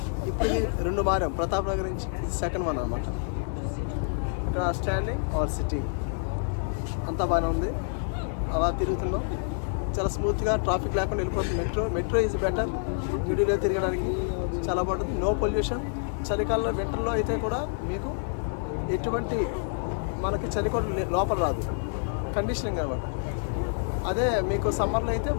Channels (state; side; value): silent; right; digital silence